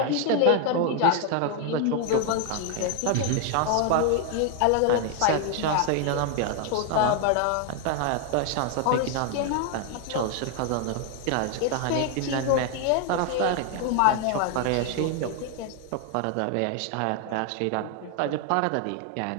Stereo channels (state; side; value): different; both; correlation 0.00